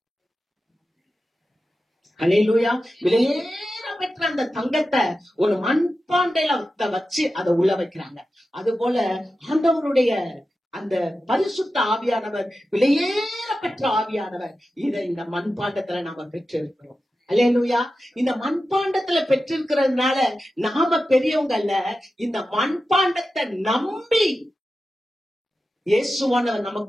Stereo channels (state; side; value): normal; both; correlation 0.92